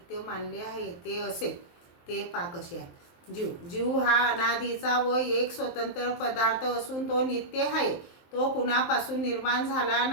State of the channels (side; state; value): right; late; 23 ms